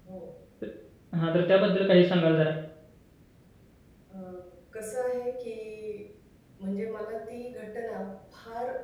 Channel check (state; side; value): identical; both; correlation 1.00